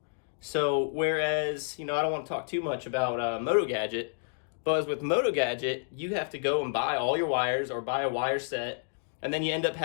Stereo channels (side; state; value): right; silent; digital silence